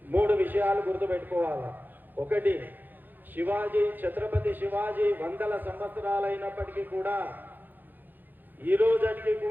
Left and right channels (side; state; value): left; late; 0.088 ms